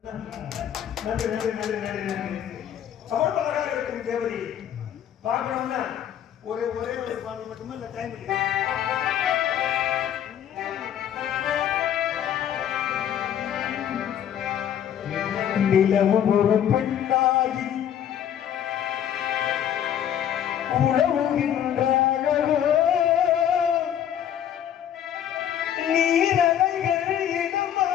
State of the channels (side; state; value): right; quieter; 9.9 dB